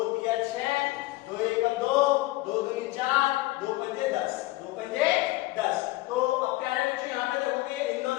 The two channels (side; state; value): right; quieter; 19.4 dB